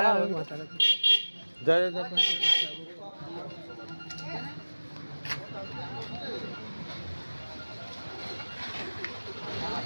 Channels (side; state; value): both; inverted; correlation -1.00